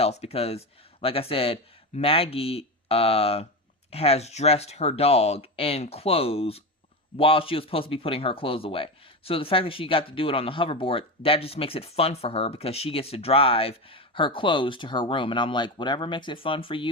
Because, like I said, Maggie has dressed her dog in clothes while she was supposed to be putting her clothes away. So the fact that she got to do it on the hoverboard, that just makes it fun for her, because she gets to drive her clothes to her room. And I'm like, whatever makes it fun for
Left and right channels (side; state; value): both; normal; correlation 0.19